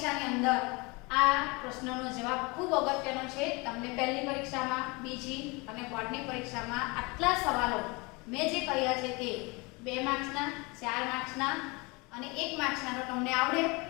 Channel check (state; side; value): quieter; right; 26.9 dB